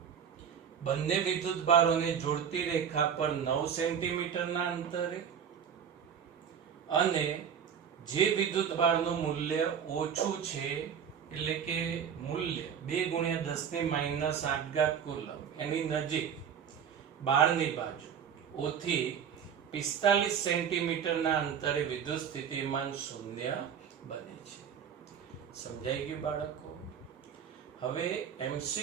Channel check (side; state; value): left; quieter; 7.8 dB